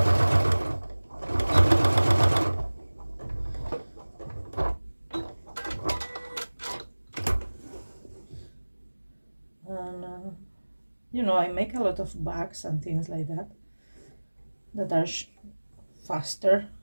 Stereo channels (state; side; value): inverted; both; correlation -1.00